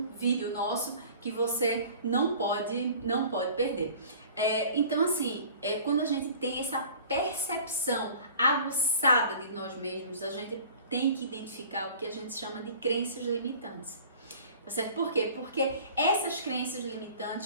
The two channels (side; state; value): both; inverted; correlation -0.46